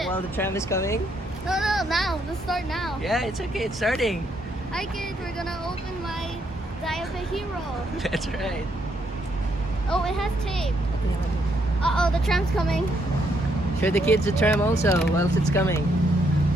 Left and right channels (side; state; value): both; normal; correlation 0.74